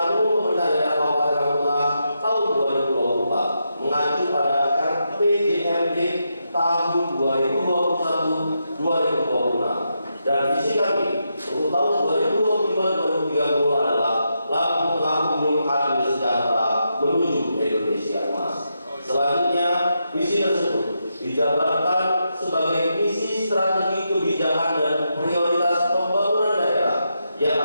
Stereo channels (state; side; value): inverted; both; correlation -0.84